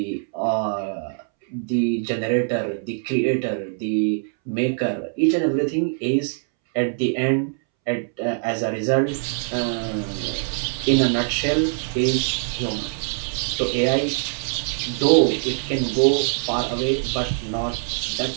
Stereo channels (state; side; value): silent; left; 63 dB below the other